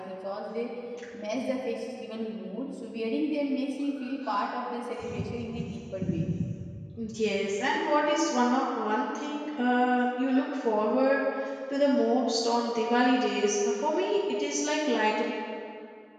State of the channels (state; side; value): identical; both; correlation 1.00